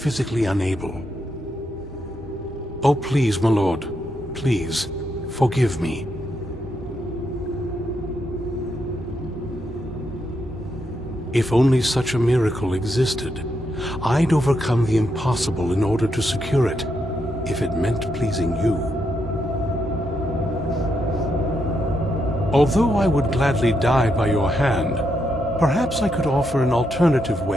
unable. Oh, please, my lord. Please, forgive me. If only such a miracle existed, I'd overcome the impossible in order to secure it, if it meant pleasing you. Although I would gladly die by your hand, perhaps I could offer an alternative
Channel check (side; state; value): both; normal; correlation 0.81